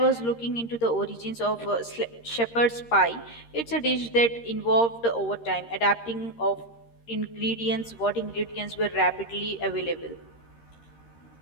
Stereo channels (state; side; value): late; right; 13 ms